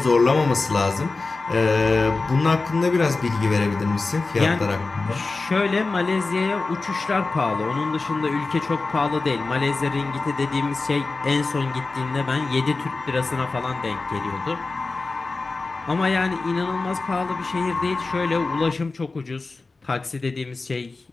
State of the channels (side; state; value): right; quieter; 3.7 dB